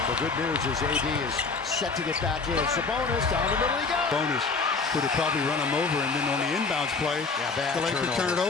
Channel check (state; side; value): quieter; right; 4.4 dB